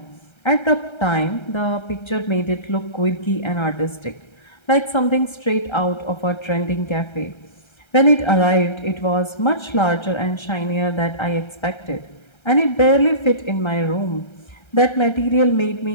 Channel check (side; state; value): right; late; 1.3 ms